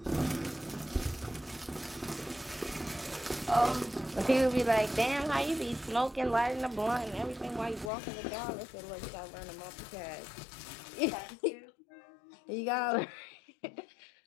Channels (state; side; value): drops out; right; at 7.9 s